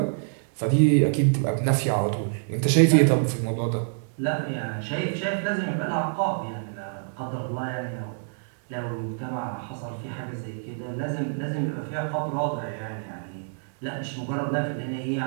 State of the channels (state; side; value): silent; left; digital silence